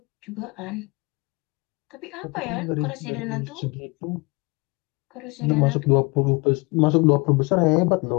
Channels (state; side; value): quieter; right; 27.1 dB